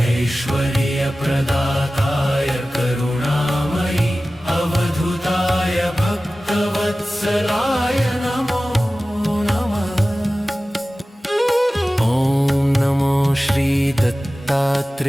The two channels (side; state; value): both; normal; correlation 0.96